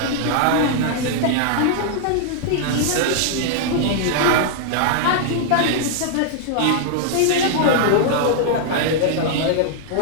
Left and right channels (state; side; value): different; both; correlation -0.01